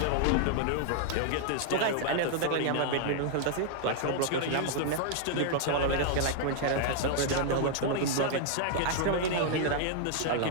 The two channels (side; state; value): both; different; correlation -0.01